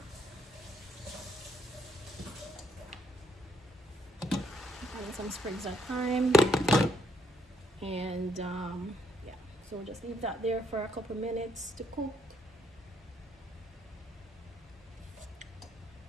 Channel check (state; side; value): normal; both; correlation 0.73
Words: Adding some sprigs of thyme, and yeah. So we'll just leave that there for a couple minutes to cook.